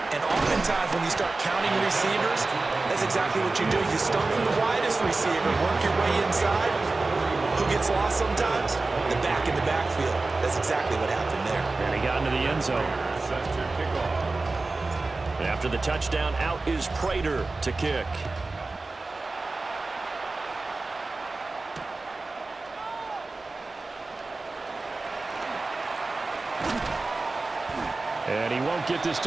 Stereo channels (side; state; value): left; quieter; 3.4 dB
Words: and oftentimes when you start counting receivers, that's exactly what you do. You start from the widest receiver, work your way inside. Who gets lost sometimes? The back in the backfield. That's exactly what happened there. And he got into the end zone. After the touchdown, out is Prater to kick. And he won't get this